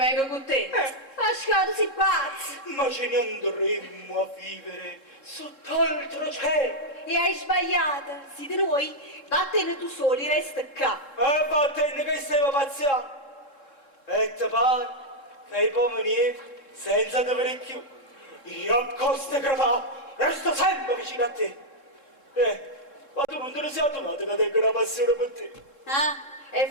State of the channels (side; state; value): right; late; 3.7 ms